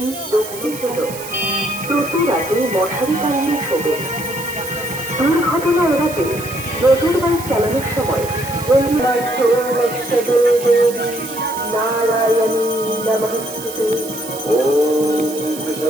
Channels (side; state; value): right; noise; hiss, 12 dB below the sound